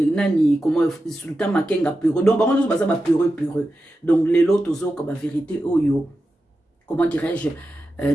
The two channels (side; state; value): both; normal; correlation 0.91